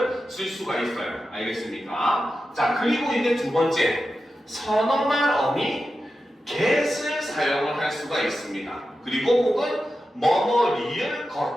쓸 수가 있어요. 알겠습니까? 자, 그리고 이제 두 번째, 서너 말 어미 get을 사용을 할 수가 있습니다. 그리고 혹은 뭐뭐 리을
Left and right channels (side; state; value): both; normal; correlation 0.91